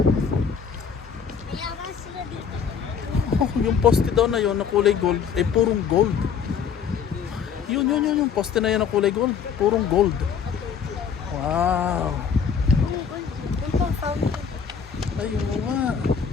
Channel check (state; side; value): quieter; right; 7.0 dB